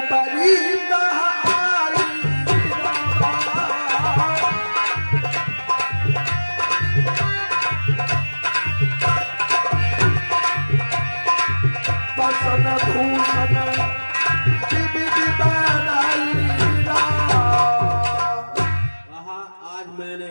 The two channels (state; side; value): inverted; both; correlation -1.00